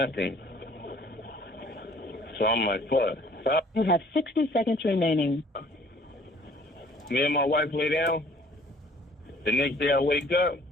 So I'm like, fuck. So You have 60 seconds remaining. Me and my wife lay down. The next day I wake up,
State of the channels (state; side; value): normal; both; correlation 0.55